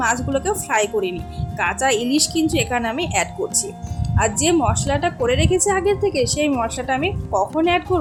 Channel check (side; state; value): both; identical; correlation 1.00